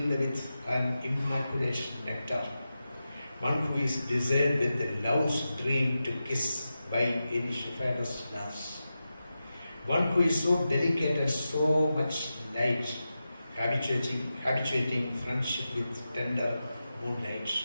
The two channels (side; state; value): both; inverted; correlation -0.92